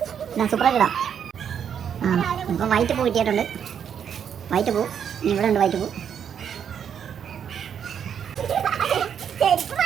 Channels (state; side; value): quieter; left; 8.2 dB